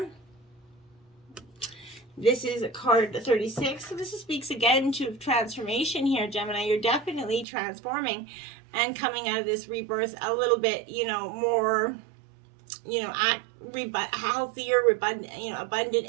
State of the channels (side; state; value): left; drops out; at 7.5 s